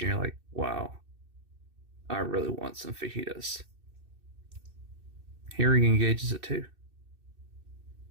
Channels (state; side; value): late; left; 2.6 ms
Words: you're like, wow, I really want some fajitas. Hearing engages it too.